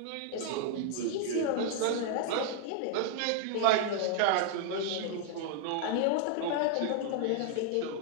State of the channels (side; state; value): both; different; correlation 0.00